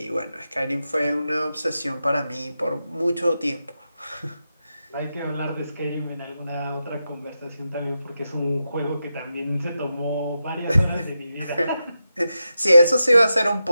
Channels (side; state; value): both; inverted; correlation -0.89